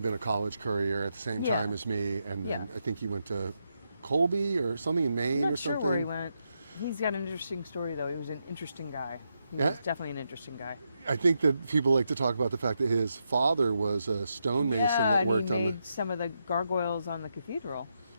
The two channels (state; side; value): inverted; both; correlation -0.83